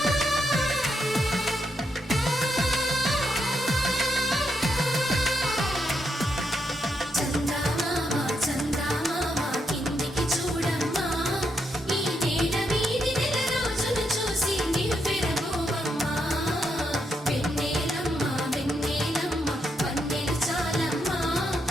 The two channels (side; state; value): both; normal; correlation 0.80